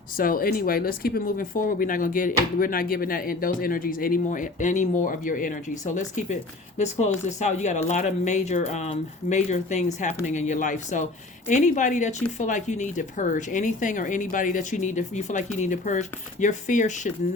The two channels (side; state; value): right; quieter; 3.1 dB